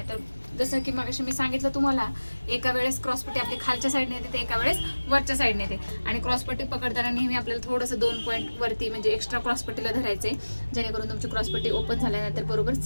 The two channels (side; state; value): both; inverted; correlation -1.00